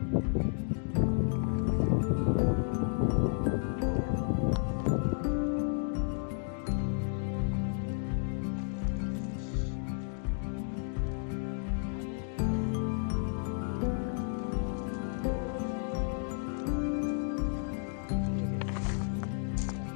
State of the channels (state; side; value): silent; right; digital silence